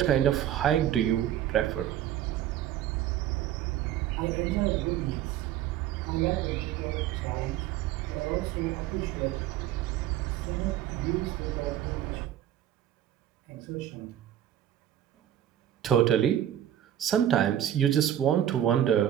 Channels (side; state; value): left; quieter; 11.4 dB